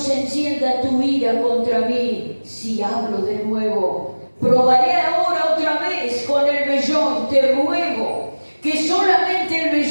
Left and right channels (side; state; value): both; inverted; correlation -1.00